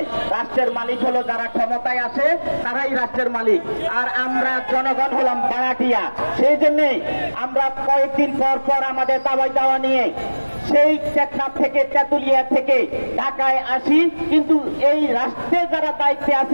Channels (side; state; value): both; inverted; correlation -1.00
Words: রাষ্ট্রের মালিক হলো যারা ক্ষমতায় আসে, তারাই রাষ্ট্রের মালিক, আর আমরা জনগণ হলাম ভাড়াটিয়া। সেই জন্যই আমরা কয়েকদিন পর পর আমাদের দাবি দাওয়া নিয়ে সেই টেকনাফ থেকে, তেঁতুলিয়া থেকে ঢাকায় আসি, কিন্তু এই রাষ্ট্রে যারা দায়িত্বে